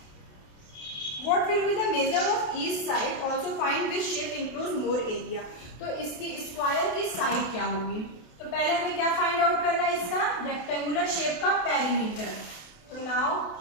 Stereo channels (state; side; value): late; right; 28 ms